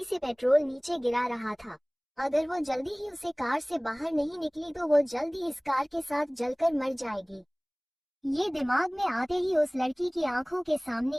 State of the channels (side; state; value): both; identical; correlation 1.00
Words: से पेट्रोल नीचे गिरा रहा था। अगर वो जल्दी ही उसे कार से बाहर नहीं निकली तो वो जल्दी इस कार के साथ जलकर मर जाएगी। ये दिमाग में आते ही उस लड़की की आंखों के सामने